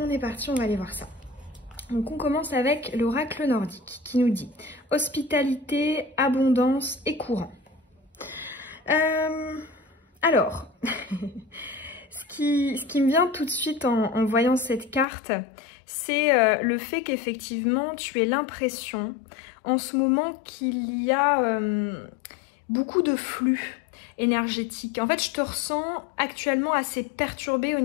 est parti, on va aller voir ça. Donc on commence avec l'oracle nordique qui nous dit hospitalité, abondance et courant. Alors, ce qui me vient tout de suite en voyant cette carte, c'est le fait qu'effectivement tu aies l'impression en ce moment qu'il y a beaucoup de flux énergétique. En fait, je te ressens actuellement assez perturbée au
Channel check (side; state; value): right; drops out; at 15.1 s